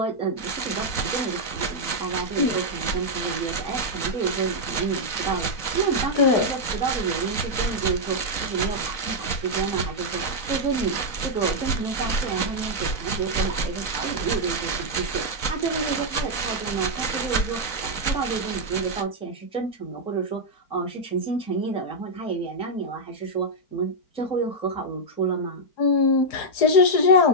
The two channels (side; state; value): right; late; 4.1 ms